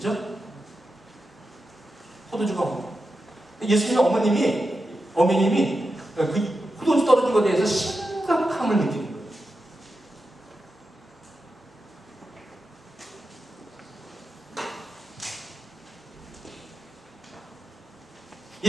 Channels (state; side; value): normal; both; correlation 0.89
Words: 포도주가 없고 예수님의 어머님이 그 포도주 떨어진 것에 대해서 심각함을 느끼는 거예요.